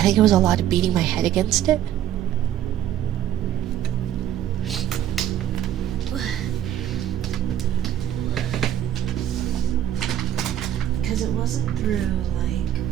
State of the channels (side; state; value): left; quieter; 11.3 dB